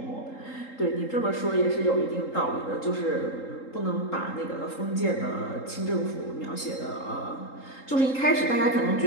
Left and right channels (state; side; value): late; right; 3.8 ms